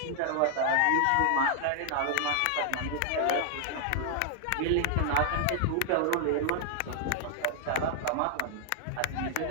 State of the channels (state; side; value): different; both; correlation 0.00